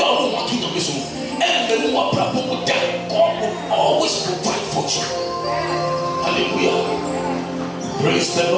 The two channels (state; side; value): identical; both; correlation 1.00